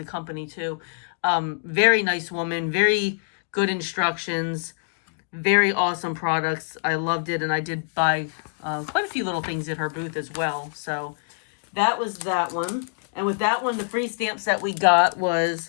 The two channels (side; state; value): right; silent; digital silence